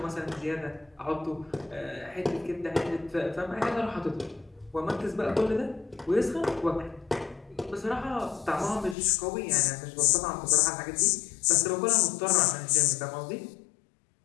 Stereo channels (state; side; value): drops out; right; at 9.0 s